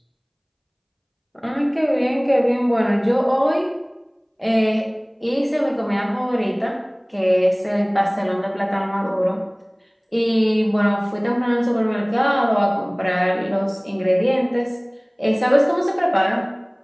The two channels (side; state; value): both; identical; correlation 1.00